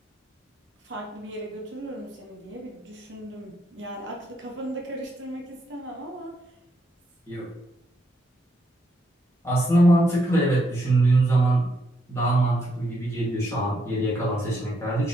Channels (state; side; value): normal; both; correlation 0.77